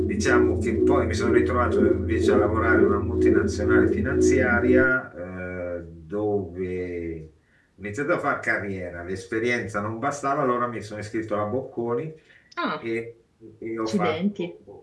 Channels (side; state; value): both; identical; correlation 1.00